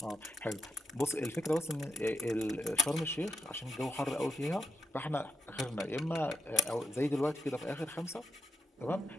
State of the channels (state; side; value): normal; both; correlation 0.85